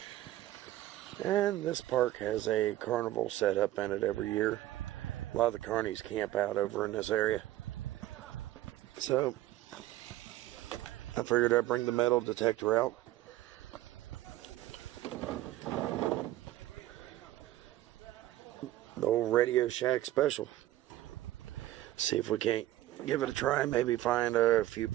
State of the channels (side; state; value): left; quieter; 15.0 dB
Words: And this park has a carnival set up in it every year. A lot of the carnies camp out over in this area. So I figured I'd bring the metal detector out. The old Radio Shack special. See if we can't give it a try. Maybe find a few